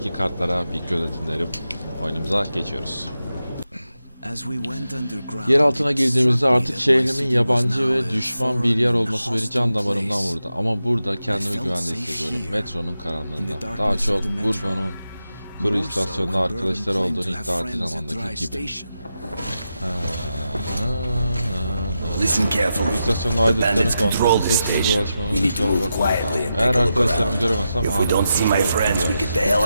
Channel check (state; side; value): inverted; both; correlation -0.89